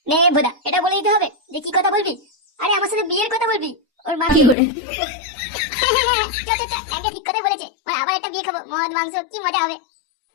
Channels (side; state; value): right; drops out; at 4.5 s